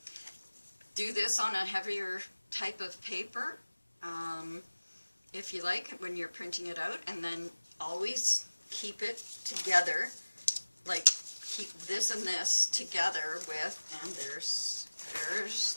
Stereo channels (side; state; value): both; inverted; correlation -1.00